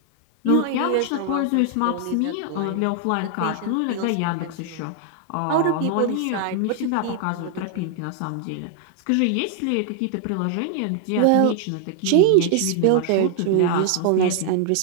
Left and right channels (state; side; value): different; both; correlation 0.00